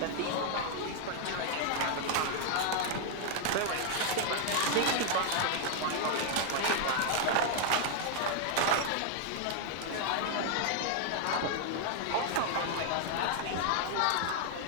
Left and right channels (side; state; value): both; different; correlation 0.00